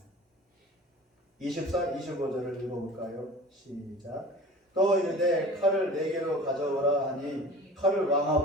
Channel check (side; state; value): both; normal; correlation 0.40